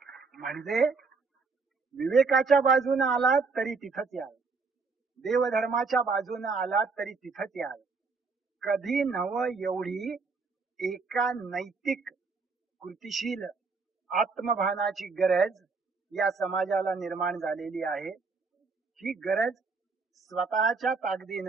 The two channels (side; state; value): left; quieter; 4.5 dB